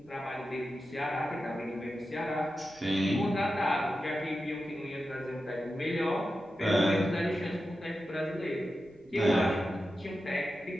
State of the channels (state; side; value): noise; right; rumble, 28 dB below the sound